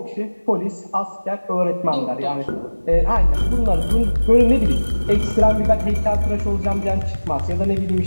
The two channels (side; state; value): both; inverted; correlation -1.00